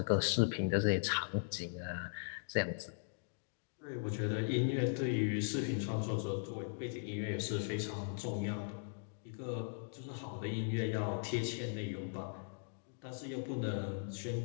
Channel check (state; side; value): silent; right; digital silence